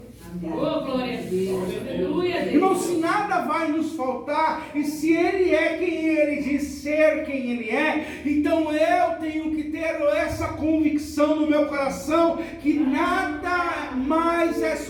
Oh, glória a Deus. Aleluia, Deus. Irmão, se nada vai nos faltar, e se Ele é quem Ele diz ser, quem Ele é, então eu tenho que ter essa convicção no meu coração, que nada mais é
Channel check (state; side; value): identical; both; correlation 1.00